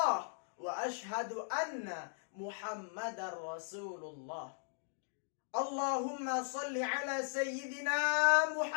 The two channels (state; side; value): silent; right; digital silence